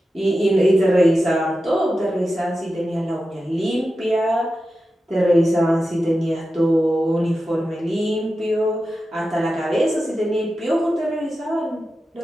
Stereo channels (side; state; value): both; normal; correlation 0.92